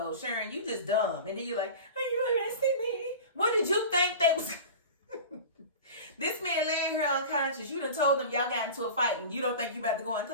Sharon, you just dumb. And then you're like, are you arresting me? What did you think that was? This man laying here unconscious. You done told them y'all got into a fight and you don't think you about to go in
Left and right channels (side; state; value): both; inverted; correlation -0.35